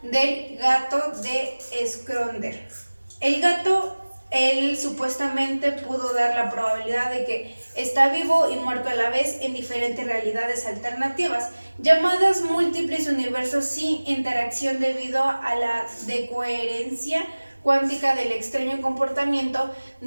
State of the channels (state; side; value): inverted; both; correlation -1.00